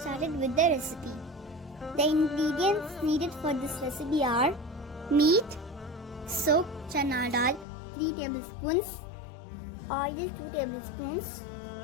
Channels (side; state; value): right; drops out; at 7.7 s